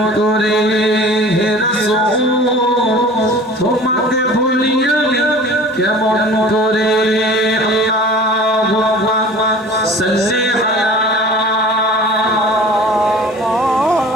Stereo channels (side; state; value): both; normal; correlation 0.43